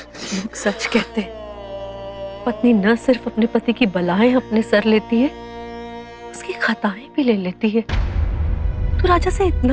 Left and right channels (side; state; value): both; identical; correlation 1.00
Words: लोग सच कहते हैं, पत्नी न सिर्फ अपने पति की बलाएं अपने सर लेती है, उसकी खताएं भी ले लेती है। तू राजा से